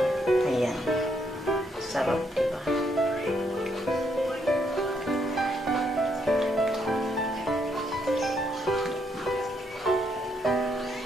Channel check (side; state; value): both; normal; correlation 0.75